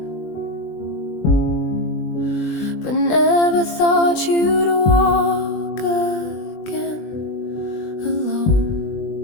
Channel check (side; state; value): right; late; 20 ms